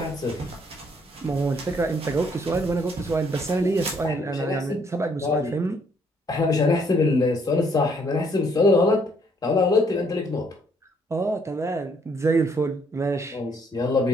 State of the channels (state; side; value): normal; both; correlation 0.67